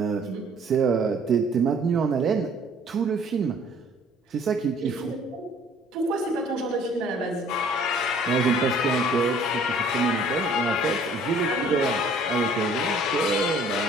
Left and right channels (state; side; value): normal; both; correlation 0.56